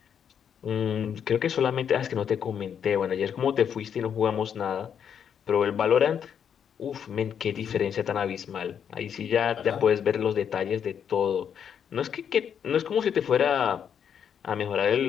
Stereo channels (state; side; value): quieter; right; 8.1 dB